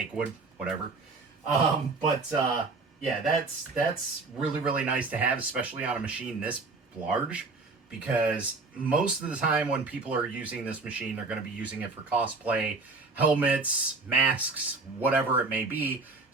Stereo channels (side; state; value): left; quieter; 3.8 dB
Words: wood, whatever. Yeah, that's really, really nice to have, especially on a machine this large, because most of the time when people are using this machine, they're going to be using it for cosplay, helmets, masks, whatever it may be.